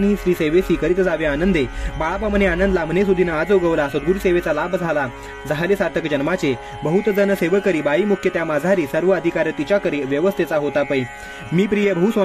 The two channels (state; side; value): identical; both; correlation 1.00